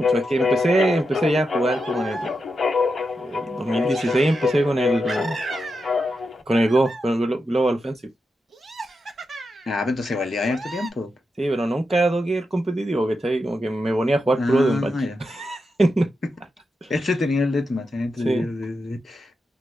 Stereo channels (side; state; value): both; normal; correlation 0.87